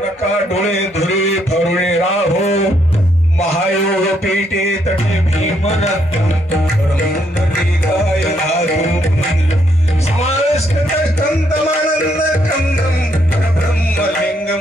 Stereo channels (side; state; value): both; normal; correlation 0.73